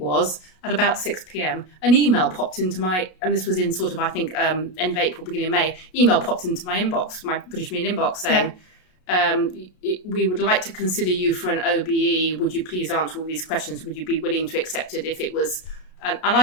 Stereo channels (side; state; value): right; late; 33 ms